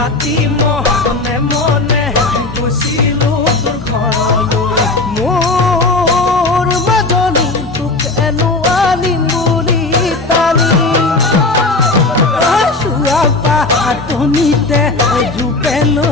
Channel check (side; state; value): right; quieter; 3.3 dB